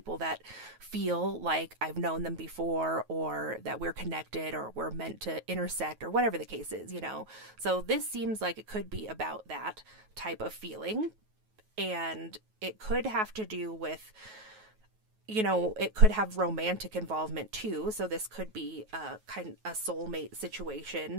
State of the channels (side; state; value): left; late; 9.3 ms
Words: that feel like I've known them before, or that we're connected, or we're meant to intersect, or whatever the case is, So this seems like it could be about that type of feeling. And it could have to do with, it could have romantic involvement too. So this could be a soulmate